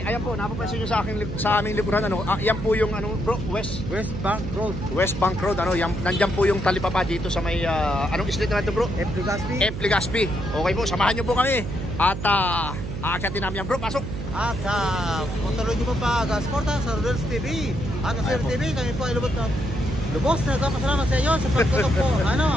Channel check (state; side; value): noise; right; hum, 6 dB below the sound